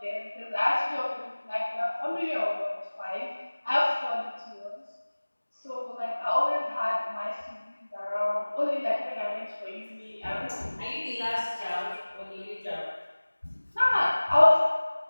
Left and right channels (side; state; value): both; inverted; correlation -1.00